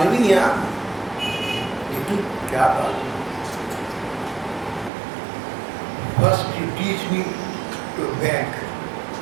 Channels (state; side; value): drops out; left; at 4.9 s